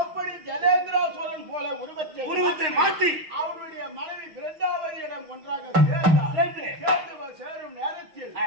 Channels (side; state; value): left; late; 6.4 ms